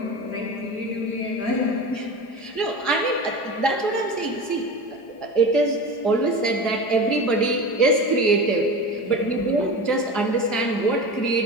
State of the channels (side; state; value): right; late; 4.9 ms